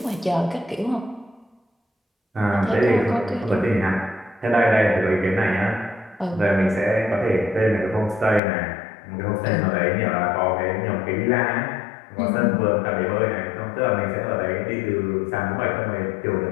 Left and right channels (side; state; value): right; drops out; at 8.4 s